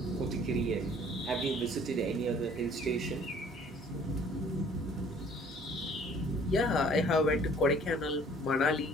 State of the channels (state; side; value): normal; both; correlation 0.55